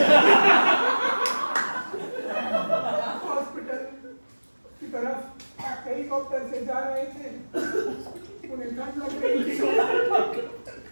हॉस्पिटल की तरफ हेलीकॉप्टर से जा रहे थे, उन्हें ठंड लग रही थी,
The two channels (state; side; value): inverted; both; correlation -1.00